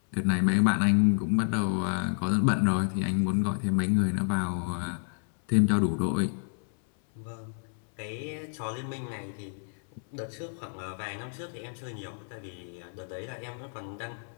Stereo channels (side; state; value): right; silent; 58 dB below the other